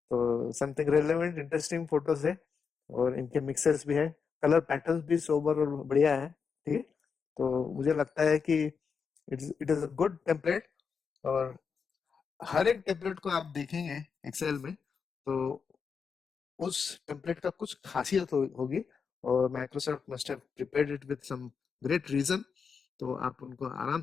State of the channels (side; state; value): right; quieter; 5.9 dB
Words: तो समथिंग रेलेवेंट इंटरेस्टिंग फोटोज है और इनके मिक्सर्स भी है, कलर पैटर्न्स भी सोबर और बढ़िया है, ठीक है। तो मुझे लगता है कि it is a good template, और हर एक टेम्पलेट को आप देखेंगे एक्सेल में तो उस टेम्पलेट का कुछ खासियत होगी, और Microsoft must have prepared it with some great reason, तो आप उनको आराम